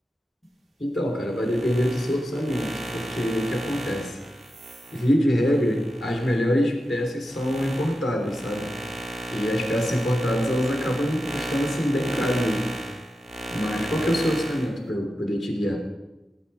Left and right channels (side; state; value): both; normal; correlation 0.90